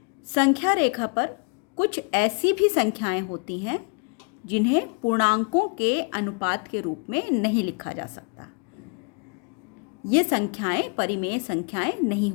संख्या रेखा पर कुछ ऐसी भी संख्याएं होती हैं जिन्हें पूर्णांकों के अनुपात के रूप में नहीं लिखा जा सकता। ये संख्याएं परिमेय संख्याएं नहीं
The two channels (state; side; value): quieter; right; 34.7 dB